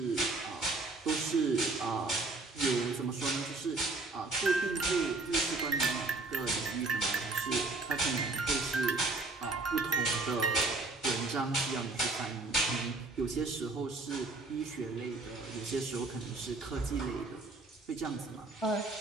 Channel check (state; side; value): quieter; left; 3.3 dB